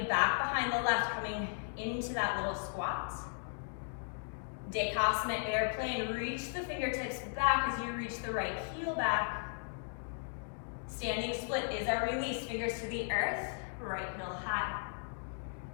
back behind the left, coming into that little squat. Dekasana airplane, reach the fingertips back as you reach the right heel back. Standing split is our release, fingers to the earth, right heel high.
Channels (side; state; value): right; silent; digital silence